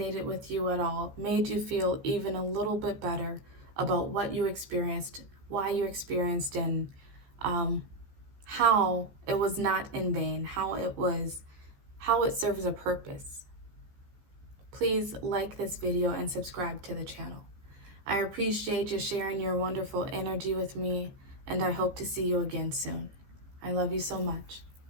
with you at all, made you feel even a little bit better about what you experienced, why you experienced, and how it was not in vain, how it serves a purpose, please like this video and subscribe to the channel. I appreciate you sharing your wonderful energy with me, and I hope to see you again soon. I love you so much.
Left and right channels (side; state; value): left; late; 15 ms